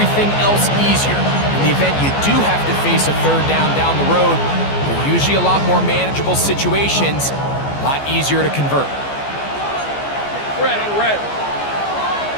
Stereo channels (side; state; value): right; late; 14 ms